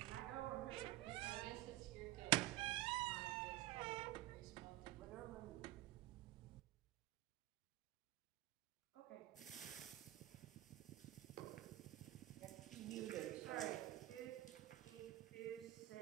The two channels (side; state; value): left; quieter; 16.7 dB